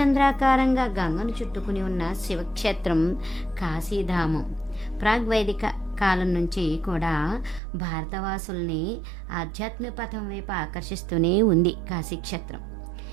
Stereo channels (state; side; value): drops out; left; at 7.6 s